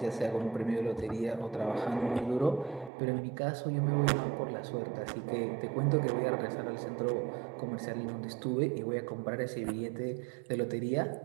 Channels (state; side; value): drops out; left; at 2.9 s